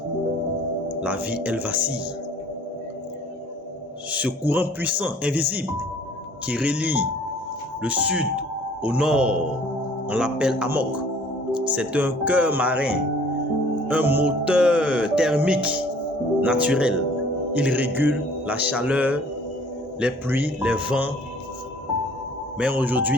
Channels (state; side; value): normal; both; correlation 0.54